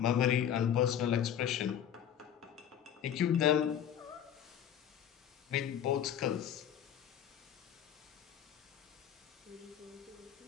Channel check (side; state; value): right; quieter; 9.6 dB